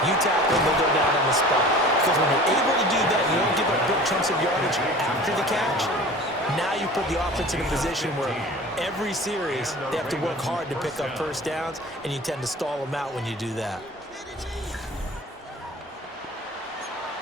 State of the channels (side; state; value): both; normal; correlation 0.41